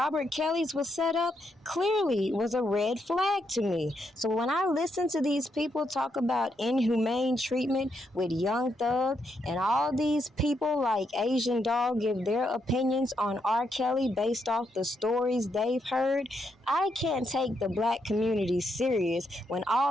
Kelly's was set up clearly was a red flag to me. So when I listen to these people talk about inhumane treatment with Young Thug and all these people like Asian Dog give their opinions on R. Kelly based off the stories they've heard, I can't take the black community serious when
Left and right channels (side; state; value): both; normal; correlation 0.79